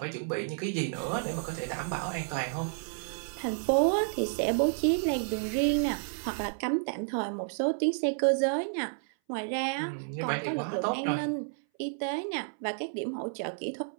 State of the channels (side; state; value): left; silent; 57 dB below the other